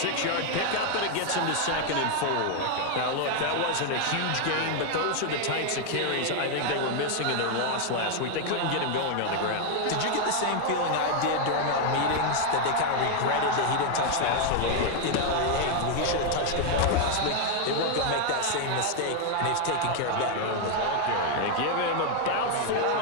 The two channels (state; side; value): different; both; correlation 0.00